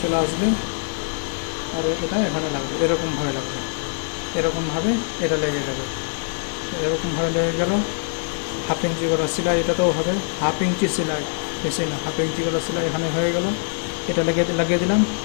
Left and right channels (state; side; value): silent; right; digital silence